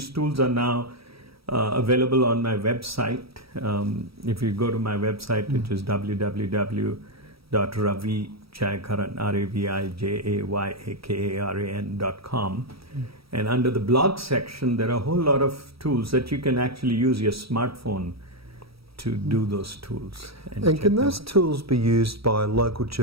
tools are now available on my website. If you go to my website, which is www.ravijayakaran, RAVIJAYAKARAN.com, and under the blog section, there are a whole lot of tools that you can actually use your smartphone to do those tools. And can those tools be used by local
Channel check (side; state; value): left; late; 0.76 ms